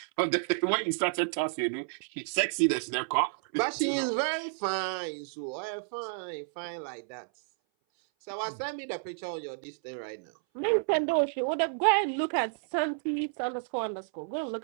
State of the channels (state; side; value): silent; left; 57 dB below the other